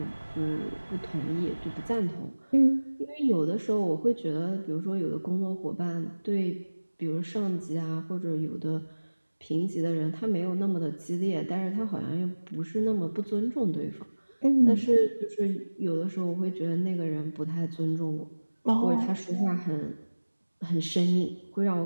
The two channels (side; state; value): both; inverted; correlation -1.00